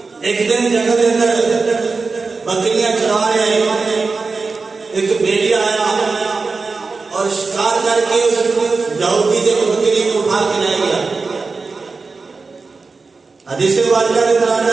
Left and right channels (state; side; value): quieter; left; 4.2 dB